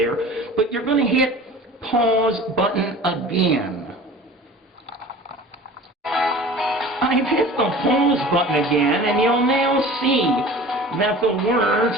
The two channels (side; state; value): both; normal; correlation 0.40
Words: But you're going to hit pause button again. I've hit the pause button again, and you'll now see that the words